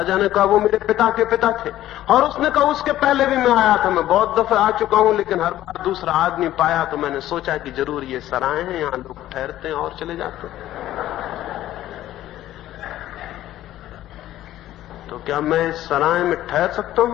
ने कहा, वो मेरे पिता के पिता थे। और उसने कहा, उसके पहले भी मैं आया था, मैं बहुत दफे आ चुका हूं, लेकिन हर बार दूसरा आदमी पाया तो मैंने सोचा कि जरूर ये सराय हैं, यहां लोग ठहरते हैं और चले जाते हैं। तो क्या मैं इस सराय में ठहर सकता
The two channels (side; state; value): right; quieter; 13.7 dB